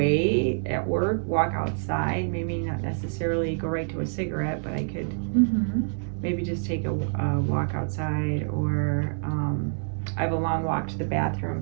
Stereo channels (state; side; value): silent; left; 60 dB below the other